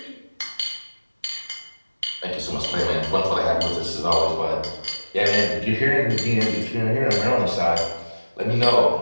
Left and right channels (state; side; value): inverted; both; correlation -1.00